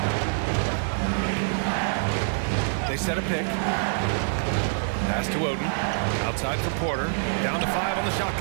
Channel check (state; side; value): silent; left; digital silence